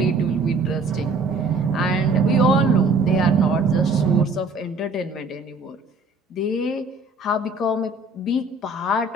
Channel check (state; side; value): quieter; left; 3.3 dB